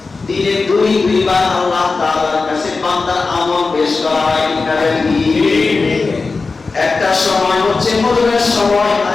দিনে দুইবার আল্লাহ তাআলার কাছে বান্দার আমল পেশ করা হয়। একটা সময় হচ্ছে ফজরের সময়,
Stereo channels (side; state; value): right; quieter; 4.1 dB